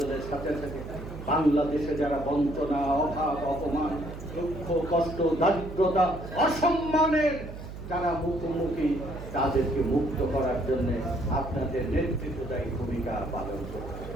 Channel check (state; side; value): noise; right; hum, 11 dB below the sound